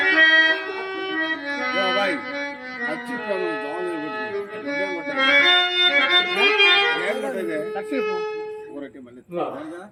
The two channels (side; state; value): both; identical; correlation 1.00